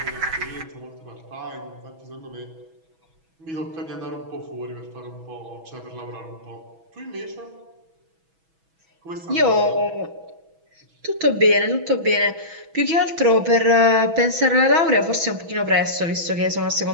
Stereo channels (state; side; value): late; left; 6.1 ms